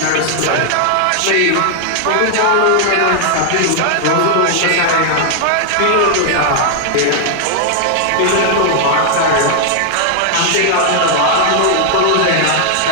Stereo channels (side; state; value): both; different; correlation 0.00